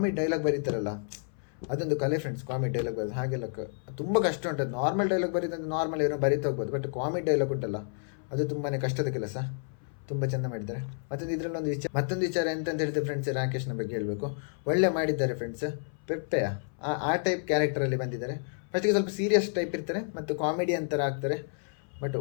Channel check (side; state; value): right; silent; 58 dB below the other